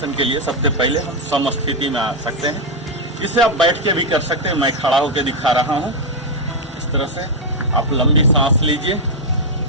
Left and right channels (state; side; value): normal; both; correlation 0.01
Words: के लिए सबसे पहले हम समस्थिति में आ सकते हैं। इसे आप बैठ के भी कर सकते हैं, मैं खड़ा होकर दिखा रहा हूँ। इस तरह से आप लंबी सांस लीजिए,